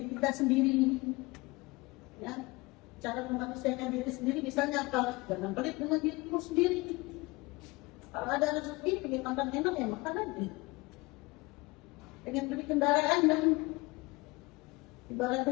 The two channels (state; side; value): quieter; right; 23.9 dB